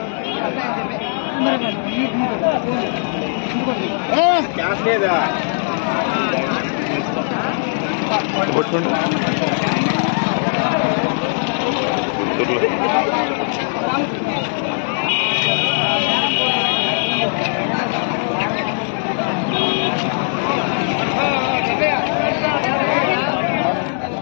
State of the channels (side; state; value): right; silent; 66 dB below the other